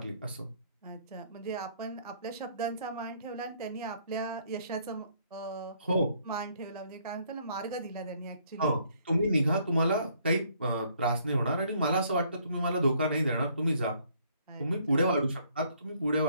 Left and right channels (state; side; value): inverted; both; correlation -0.65